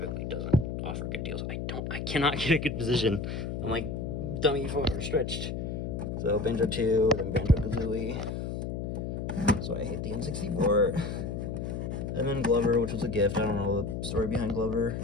doesn't offer good deals. I cannot get a good position. I'm like dummy far stretched. So Banjo 2, then Banjo-Kazooie. So I hate the N64. And then Glover, which was a gift. I don't know the story behind Glover.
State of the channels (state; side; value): noise; left; hum, 4 dB below the sound